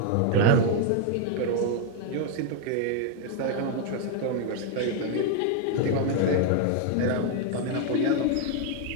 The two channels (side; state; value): both; different; correlation 0.01